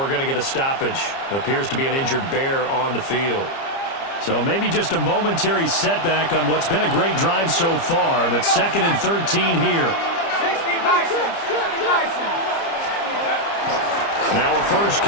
going to get a stoppage. Appears to be an injured Bear on the field. So maybe just a momentary setback on what's been a great drive so far, but 2nd and 13 here. Now a first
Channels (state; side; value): late; right; 30 ms